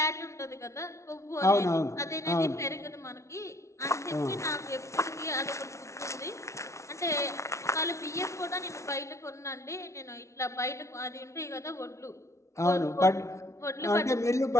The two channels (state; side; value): late; right; 0.14 ms